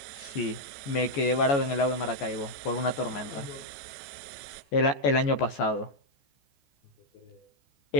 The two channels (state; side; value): late; right; 14 ms